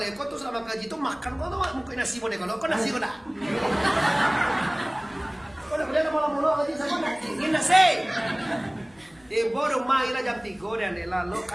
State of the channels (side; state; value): left; noise; hum, 30 dB below the sound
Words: kok tuh selama ngaji tuh makan kok tuh mungkin nasi boleh kalau kok nasi kok dah. Kok dah boleh mula ngaji sama ini nasi. Di rumah ira jam 3 dan lalu